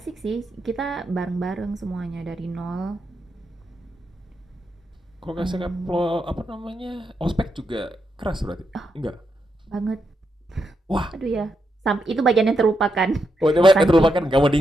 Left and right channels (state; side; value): normal; both; correlation 0.83